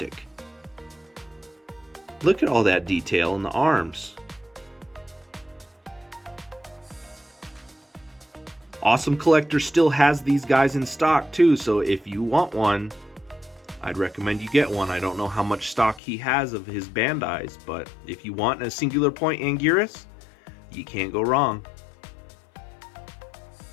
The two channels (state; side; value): drops out; right; at 16.0 s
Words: Look at all that detail in the arms. Awesome Collector still has these guys in stock too, so if you want one, I'd recommend you get one. I don't know how much stock he has of his Bandais, but if you want a Singular Point Anguirus, you can't go wrong.